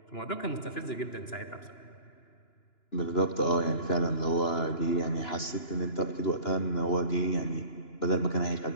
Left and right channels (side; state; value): right; late; 2.9 ms